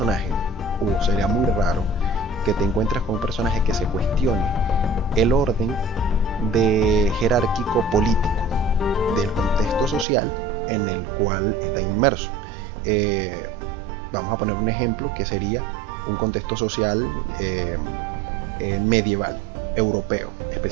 o sería muy raro, que te encuentres con un personaje que se cuestione el orden jerárquico político del contexto social en el cual está inmerso. Vamos a poner un ejemplo que sería un contexto social medieval, europeo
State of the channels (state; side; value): drops out; left; at 10.1 s